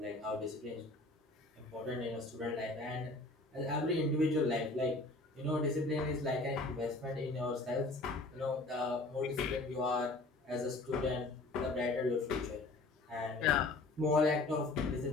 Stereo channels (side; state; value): right; quieter; 3.1 dB